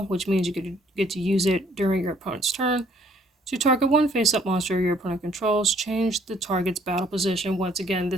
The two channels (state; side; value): normal; both; correlation 0.63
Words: which means you get to use it during your opponent's turn. To target one face-up monster your opponent controls, change the target's battle position. Once again,